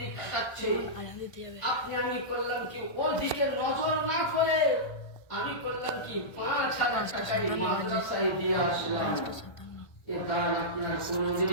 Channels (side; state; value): right; late; 1.6 ms